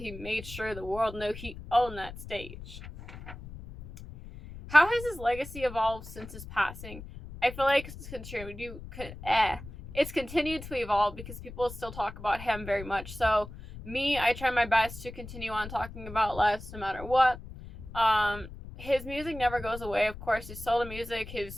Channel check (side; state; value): left; noise; rumble, 13 dB below the sound